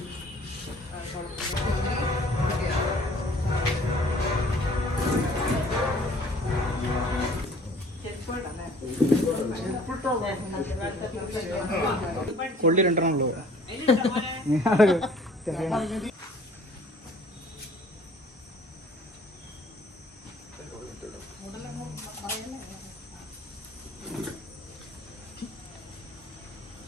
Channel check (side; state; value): both; normal; correlation 0.53